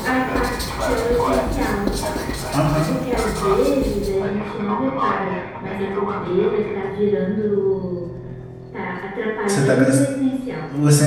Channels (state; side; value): identical; both; correlation 1.00